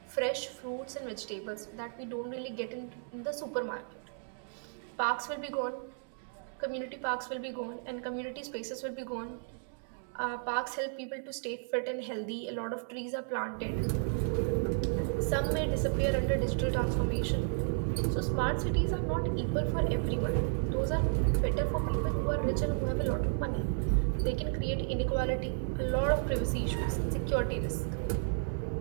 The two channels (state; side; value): silent; left; digital silence